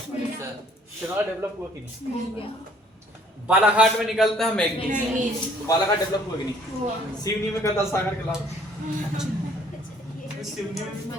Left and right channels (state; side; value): normal; both; correlation 0.59